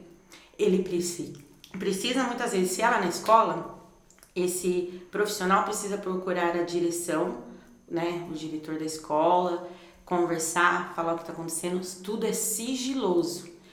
Ele precisa muitas vezes, se ela na escola, esse profissional precisa procurar a direção, né, o diretor da escola, conversar, falar o que está acontecendo. Tudo é sigiloso,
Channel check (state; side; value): identical; both; correlation 1.00